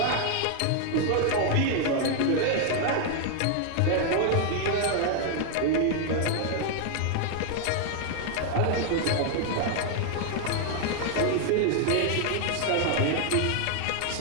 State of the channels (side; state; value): both; different; correlation 0.00